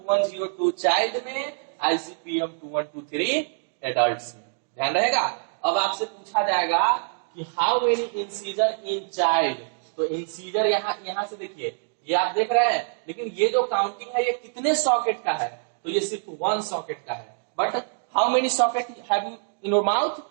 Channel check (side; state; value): left; silent; digital silence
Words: चाइल्ड में, आईसीपीएम 2123 एडल्ट्स में। ध्यान रहेगा। अब आपसे पूछा जाएगा कि how many incisor in child. तो इंसीजर यहां से देखिए, ये आप देख रहे हैं, लेकिन ये जो काउंटिंग है ये कितने सॉकेट का है, तो ये सिर्फ 1 सॉकेट का है। But how many socket have you in your mouth,